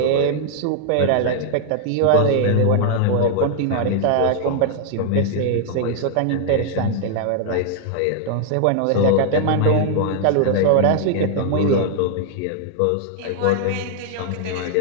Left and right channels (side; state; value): both; different; correlation 0.00